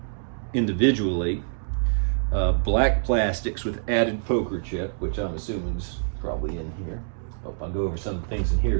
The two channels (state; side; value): silent; left; digital silence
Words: individually. Black plastics with added poker chip, which I'm assuming is probably in here. I'll go over some of the things in here